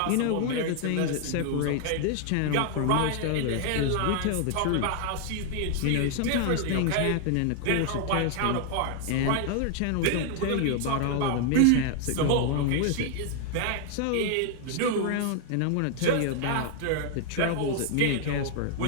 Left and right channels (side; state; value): both; different; correlation 0.00